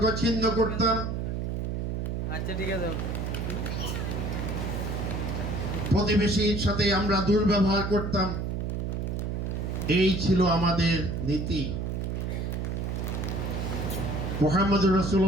ছিন্ন করতাম, আচ্ছা ঠিক আছে, প্রতিবেশীর সাথে আমরা দুর্ব্যবহার করতাম। এই ছিল আমাদের নীতি। মুহাম্মদুর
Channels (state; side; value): noise; right; hum, 2 dB below the sound